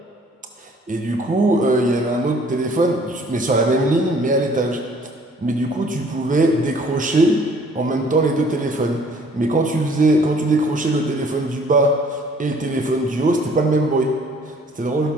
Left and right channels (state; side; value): normal; both; correlation 0.57